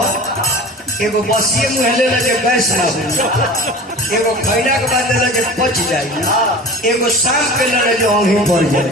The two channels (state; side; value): normal; both; correlation 0.37